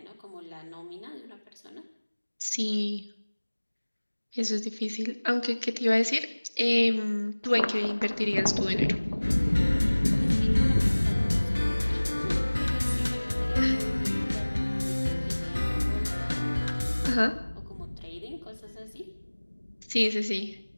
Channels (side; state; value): both; inverted; correlation -1.00